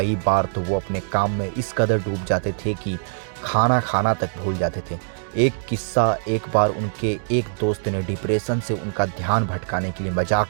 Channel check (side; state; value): left; silent; digital silence